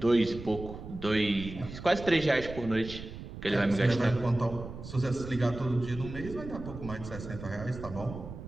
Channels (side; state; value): right; noise; rumble, 11 dB below the sound